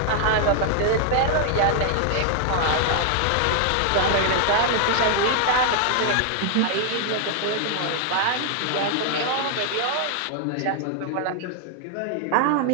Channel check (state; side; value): different; both; correlation 0.00